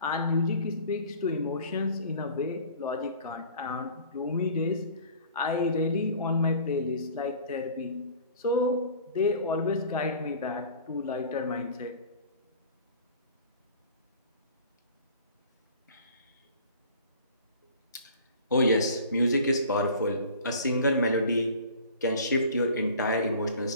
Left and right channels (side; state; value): both; inverted; correlation -0.45